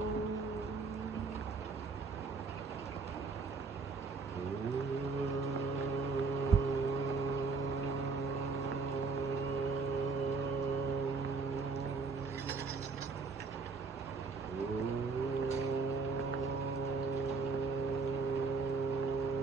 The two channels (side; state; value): left; quieter; 4.4 dB